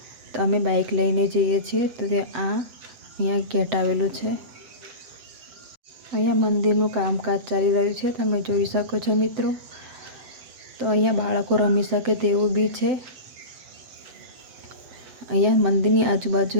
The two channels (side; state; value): left; late; 7.8 ms